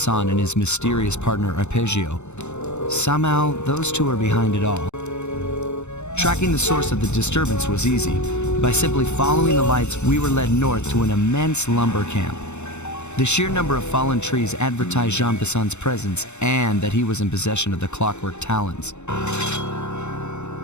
and his mysterious partner Arpeggio. Somehow, those two are behind it all. Tracking the source of the disturbance was easy. By simply following the lights, we were led north to an immense lumber camp. The sheer number of fallen trees advertised Jean Bisson's presence and that he was in possession of the clockwork talons.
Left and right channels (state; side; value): late; right; 0.82 ms